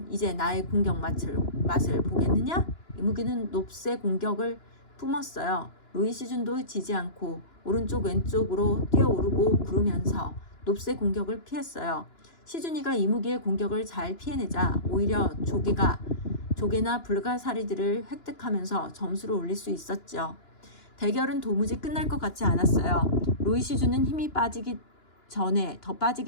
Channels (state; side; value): late; right; 2.9 ms